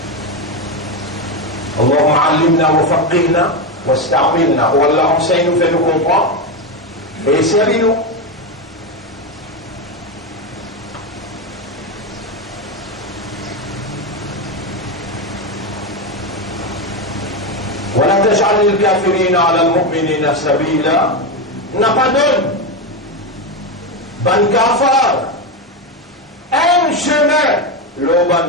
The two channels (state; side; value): normal; both; correlation 0.12